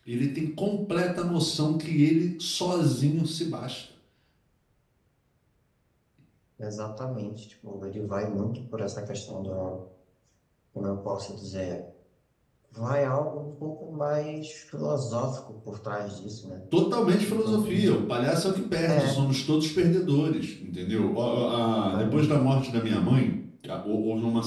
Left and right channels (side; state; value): both; identical; correlation 1.00